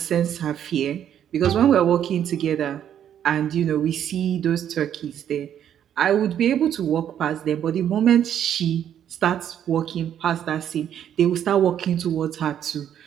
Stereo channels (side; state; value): left; quieter; 9.8 dB